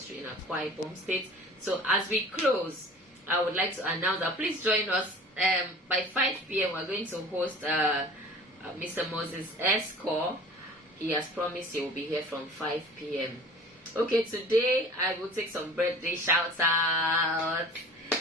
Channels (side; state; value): both; normal; correlation 0.43